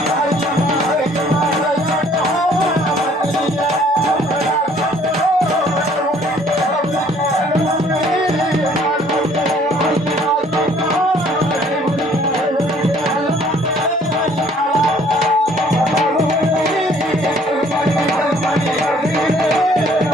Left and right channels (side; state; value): both; normal; correlation 0.59